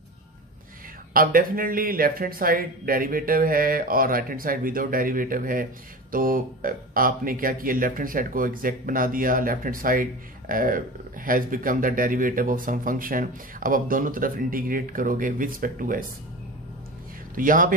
अब definitely left hand side derivative है और right hand side without derivative है, तो आपने क्या किया लेफ्ट हैंड साइड को एग्जैक्ट बना दिया, left hand side has become the derivative of some function. अब आप दोनों तरफ इंटीग्रेट करोगे विद रिस्पेक्ट टू एस, तो यहां पे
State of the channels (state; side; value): normal; both; correlation 0.30